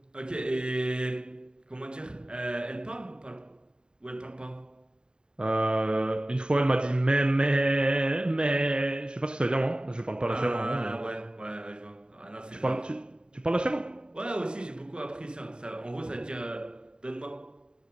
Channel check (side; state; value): left; late; 0.048 ms